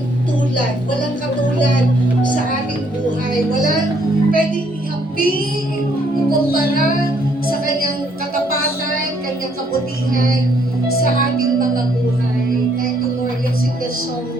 tulad, walang katulad sa ating buhay. Walang pwedeng ihamping, ikumpara sa kanyang katapatan, kanyang kabutihan sa ating mga buhay. Thank you, Lord. Let's sing the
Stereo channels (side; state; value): both; normal; correlation 0.67